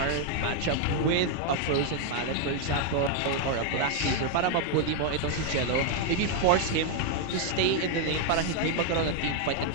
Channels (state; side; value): different; both; correlation 0.00